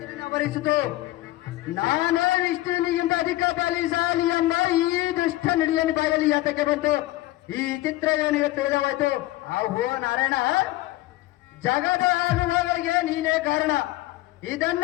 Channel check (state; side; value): quieter; right; 17.6 dB